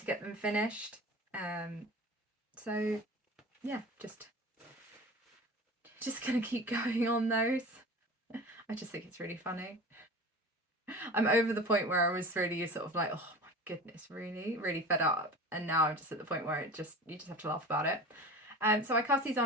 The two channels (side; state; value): both; normal; correlation 0.35